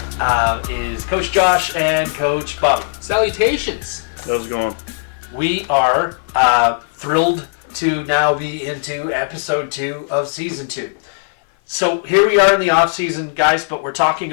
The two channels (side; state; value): right; silent; 56 dB below the other